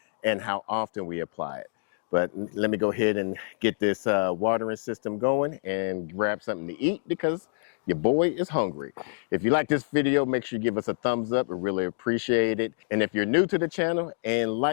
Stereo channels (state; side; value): silent; right; digital silence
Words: and how often we apply it. But let me go ahead and get this watering system going and grab something to eat because your boy is hungry. If you like this video, make sure you give us a thumbs up. We really appreciate it. And if you're new to the channel and